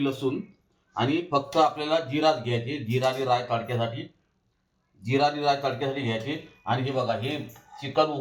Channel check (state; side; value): identical; both; correlation 1.00